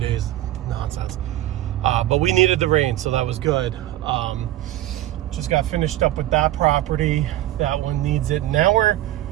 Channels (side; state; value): left; quieter; 14.4 dB